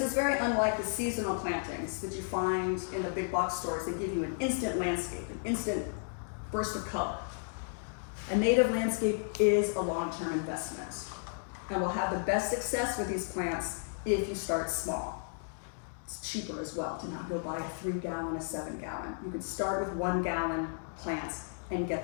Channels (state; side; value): silent; right; digital silence